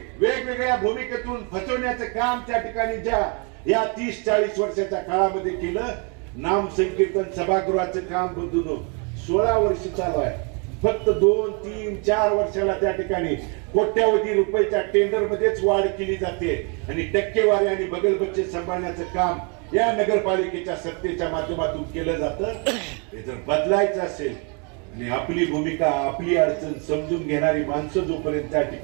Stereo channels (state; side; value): quieter; left; 35.5 dB